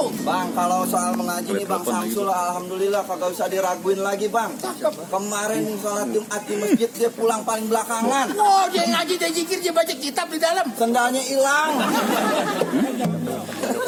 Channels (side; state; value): both; identical; correlation 1.00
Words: Bang kalau soal mengaji nih bang Samsul alhamdulillah kagak usah diraguin lagi bang. Kemarin sholat Jumat di masjid dia pulang paling belakangan. Oh, dia ngaji, dia zikir, dia baca kitab di dalam. Sendalnya hilang.